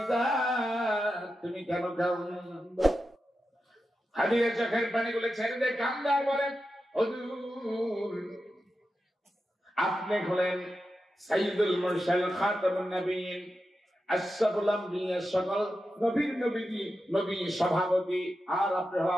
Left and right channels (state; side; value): normal; both; correlation 0.90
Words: তুমি কেন কাঁদো? খাদিজা চোখের পানিগুলো ছেড়ে দিয়ে কাঁদে আর বলেন, হুজুর আপনি হলেন সাইয়্যিদুল মুরসালিন খাতামুন নবিয়্যিন, আশরাফুল আম্বিয়া, সকল নবীর নবী সভাপতি, আর আপনি